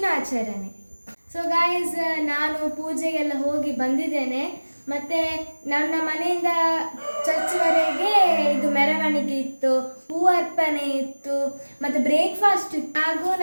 ಸೊ ಗಾಯ್ಸ್, ನಾನು ಪೂಜೆಗೆಲ್ಲ ಹೋಗಿ ಬಂದಿದ್ದೇನೆ. ಮತ್ತು ನನ್ನ ಮನೆಯಿಂದ ಚರ್ಚ್ವರೆಗೆ ಇದು ಮೆರವಣಿಗೆ ಇತ್ತು, ಹೂ ಅರ್ಪಣೆ ಇತ್ತು, ಮತ್ತು ಬ್ರೇಕ್ಫಾಸ್ಟ್ ಇತ್ತು. ಹಾಗೂ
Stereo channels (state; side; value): inverted; both; correlation -1.00